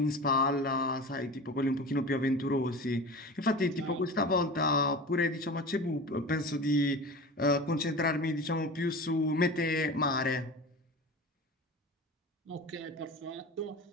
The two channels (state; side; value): normal; both; correlation 0.33